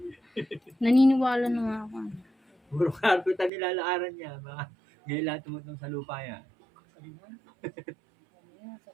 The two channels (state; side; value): drops out; left; at 3.5 s